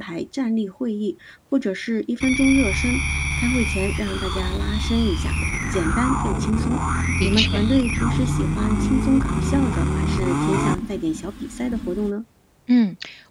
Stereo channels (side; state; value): both; identical; correlation 1.00